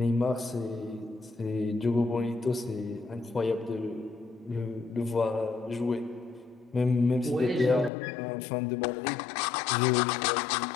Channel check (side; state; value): right; drops out; at 7.9 s